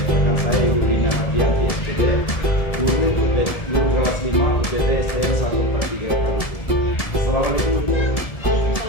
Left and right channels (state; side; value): late; right; 1.7 ms